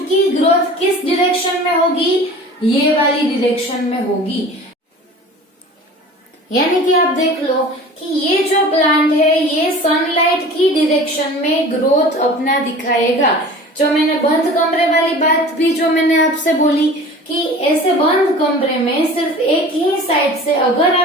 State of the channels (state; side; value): normal; both; correlation 0.41